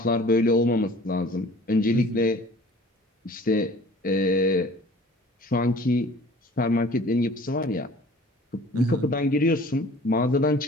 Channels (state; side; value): normal; both; correlation 0.48